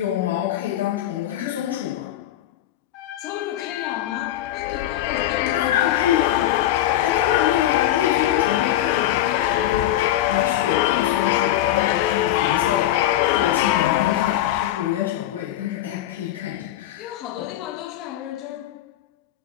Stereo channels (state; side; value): quieter; right; 13.2 dB